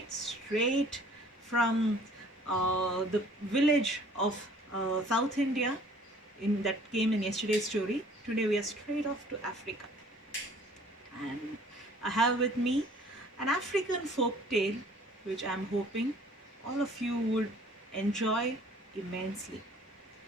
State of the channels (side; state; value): both; normal; correlation 0.54